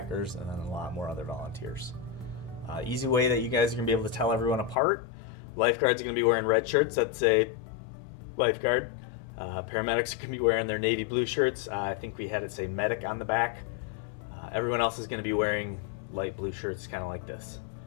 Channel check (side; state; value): right; drops out; at 4.8 s